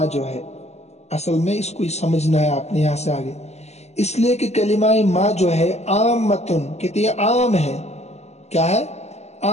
جو ہے، اصل میں اس کو سمجھنا ہے آپ نے یہاں سے آگے، اس لیے کہ کلمہ ما جو ہے عامتن، کہتے ہیں عام ہے، کیا ہے؟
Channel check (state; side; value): late; right; 0.32 ms